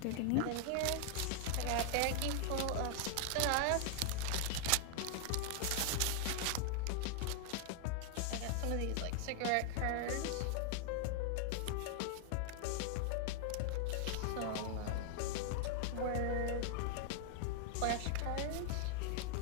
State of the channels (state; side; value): different; both; correlation 0.00